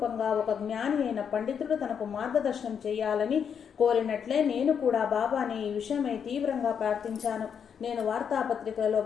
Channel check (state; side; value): quieter; right; 7.4 dB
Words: ఒక జ్ఞాని అయిన పండితుడు తనకు మార్గదర్శనం చేయాలని కోరినట్లే నేను కూడా బాబాని ఈ విషయమై తీవ్రంగా ప్రార్థించాను. నేను వార్తాపత్రికలలో